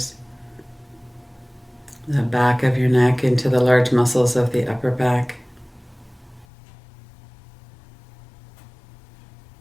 the back of your neck into the large muscles of the upper back.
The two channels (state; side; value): drops out; right; at 6.5 s